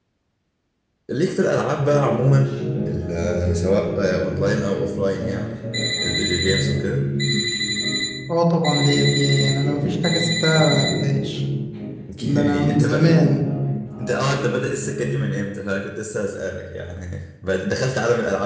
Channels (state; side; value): identical; both; correlation 1.00